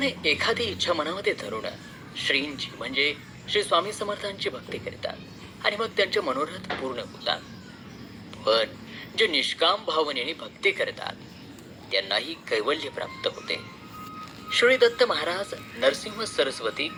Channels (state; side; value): identical; both; correlation 1.00